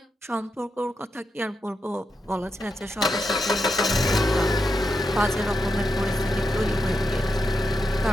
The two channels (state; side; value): normal; both; correlation 0.85